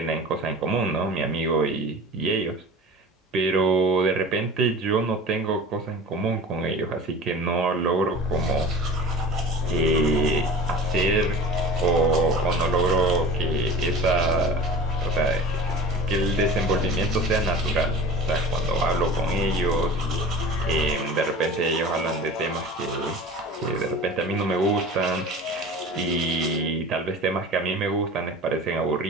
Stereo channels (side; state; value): both; normal; correlation 0.39